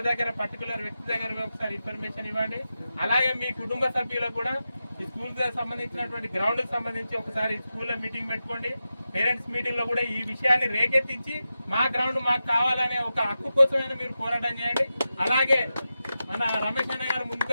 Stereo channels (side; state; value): both; inverted; correlation -0.91